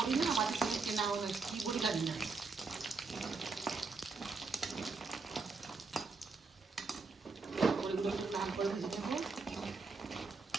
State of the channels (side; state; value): left; quieter; 4.3 dB